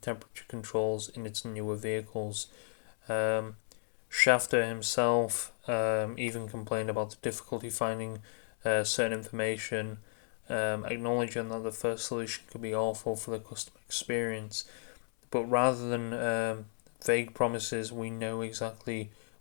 controls in its newer vehicles. Schafter himself even complained about the difficulty finding certain information, acknowledging that the first solution could be awful for the customer experience. But rather than vague promises, we know exactly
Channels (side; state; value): right; silent; 55 dB below the other